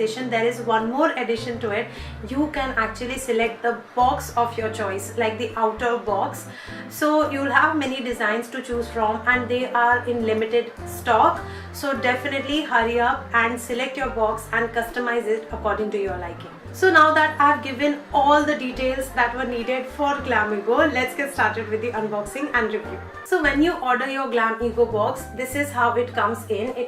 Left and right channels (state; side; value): identical; both; correlation 1.00